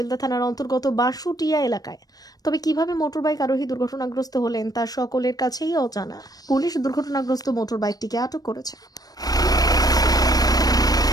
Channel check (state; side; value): late; right; 0.19 ms